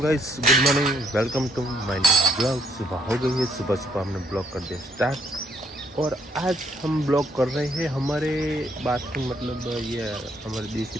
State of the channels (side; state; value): both; normal; correlation 0.69